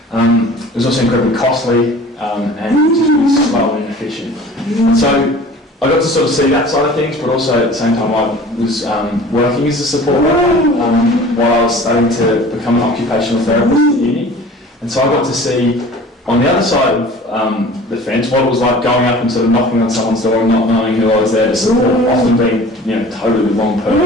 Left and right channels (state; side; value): normal; both; correlation 0.44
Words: was also incredibly costly and just really slow and inefficient. And so I got to sort of see that side of things, but also at the same time I was working as a support worker while I was starting to become an occupational therapist at uni. And so I got to see on the other side of the fence what it was like going up and sort of knocking on someone's door and not knowing who I was there to support, often being totally the wrong